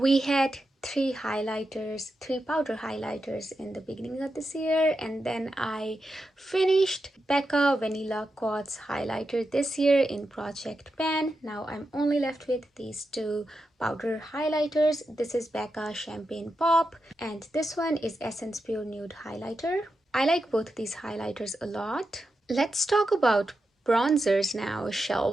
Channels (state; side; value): normal; both; correlation 0.88